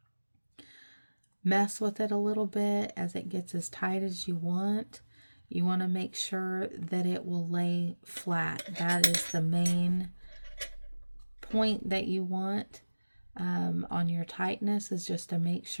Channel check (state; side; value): inverted; both; correlation -1.00